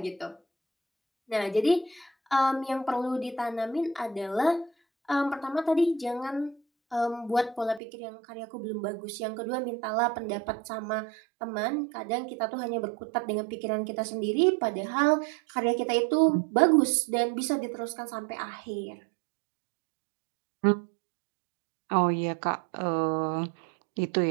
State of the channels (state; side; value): drops out; left; at 7.8 s